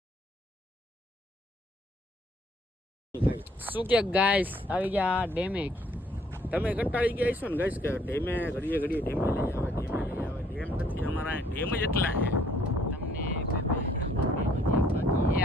શું કે ગાઈસ આવી ગયા ડેમે. તમે કંટાળી ગયા છો ને ગાઈસ કે ડેમે ઘડીએ ડેમે લઈ આવે ડેમ નથી અમારા ડેમ જ એટલા છે. તમને એ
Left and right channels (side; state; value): both; normal; correlation 0.63